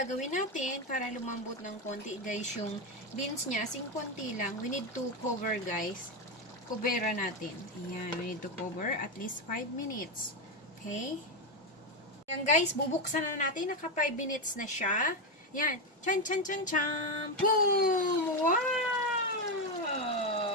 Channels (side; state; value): both; normal; correlation 0.09